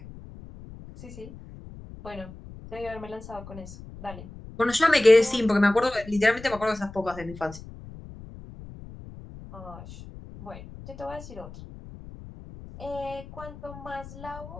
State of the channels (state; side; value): noise; left; rumble, 15 dB below the sound